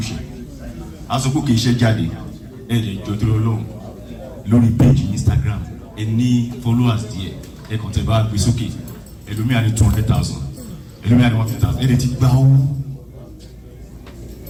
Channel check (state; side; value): identical; both; correlation 1.00